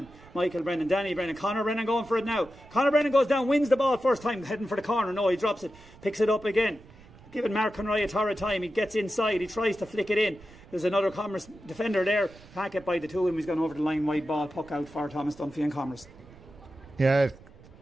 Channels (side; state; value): right; noise; rumble, 22 dB below the sound